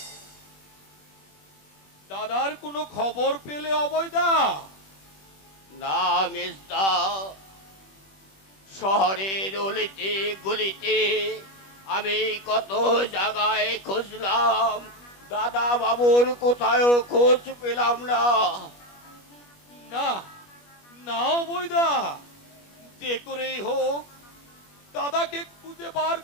দাদার কোনো খবর পেলে অবৈদা? না মেজদা, শহরের অলিতে গলিতে আমি কত জায়গায় খুঁজলাম, দাদা বাবুর কোথাও খোঁজ পেলাম না। না না অবৈদা, যে করেই হোক দাদাকে খুঁজে বার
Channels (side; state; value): right; late; 21 ms